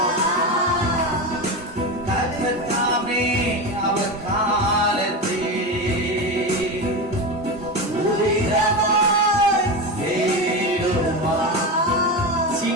கர்த்தர் தாமே அவர் காலத்திலே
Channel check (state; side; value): normal; both; correlation 0.20